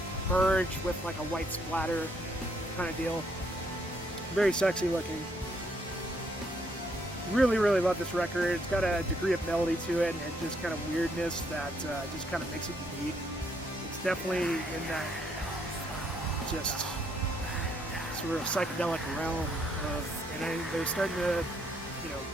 merge with like a white splatter kind of deal. Very sexy looking. Really, really love this record. It's got a degree of melody to it and just kind of weirdness that just kind of makes it unique. It's definitely in that just sort of psychedelic realm of, and they're starting to,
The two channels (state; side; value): normal; both; correlation 0.71